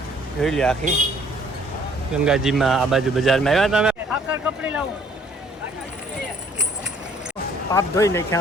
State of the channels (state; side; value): normal; both; correlation 0.59